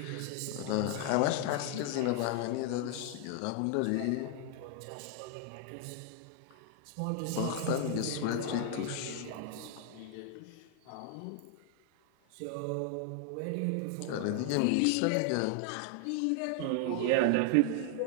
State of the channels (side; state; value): both; different; correlation 0.00